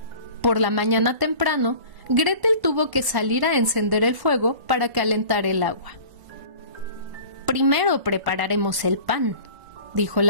Por la mañana temprano, Gretel tuvo que salir a encender el fuego para calentar el agua. «Primero prepararemos el pan», dijo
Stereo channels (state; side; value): late; left; 1.1 ms